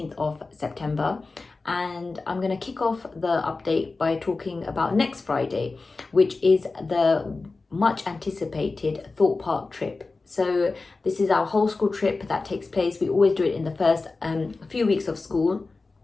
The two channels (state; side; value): quieter; right; 3.7 dB